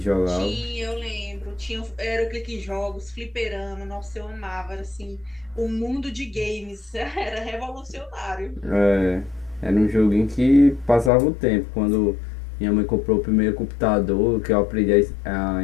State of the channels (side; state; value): right; drops out; at 11.1 s